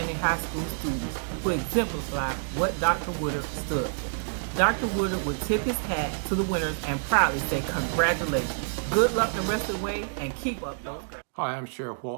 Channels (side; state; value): left; silent; digital silence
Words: high school students who exemplify what Dr. Woodard stood for. Dr. Woodard would tip his hat to the winners and proudly say congratulations. Good luck the rest of the way and keep up those grades. Hi, I'm Sheriff